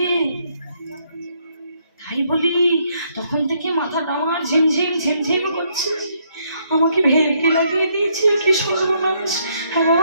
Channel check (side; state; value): both; inverted; correlation -0.72